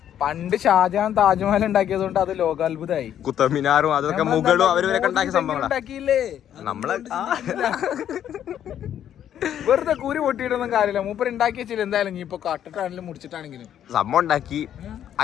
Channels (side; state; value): right; quieter; 10.2 dB